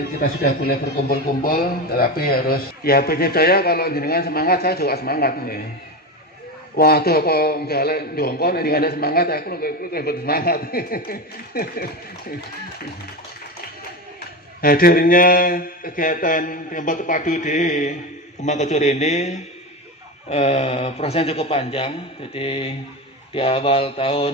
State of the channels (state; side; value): normal; both; correlation 0.20